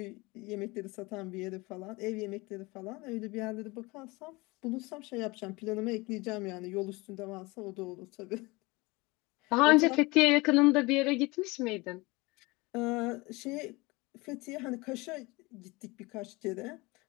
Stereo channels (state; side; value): quieter; right; 23.9 dB